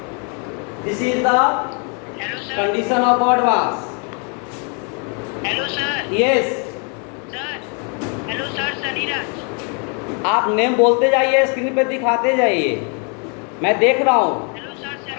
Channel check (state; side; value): quieter; right; 37.5 dB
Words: This is the condition of odd mass. Hello sir. Yes, sir hello sir, Sunnyraj. आप नेम बोलते जाइए, स्क्रीन पे दिखाते जाइए, मैं देख रहा हूँ। Hello sir,